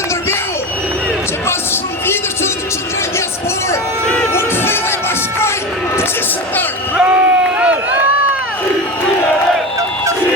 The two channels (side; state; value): both; normal; correlation 0.24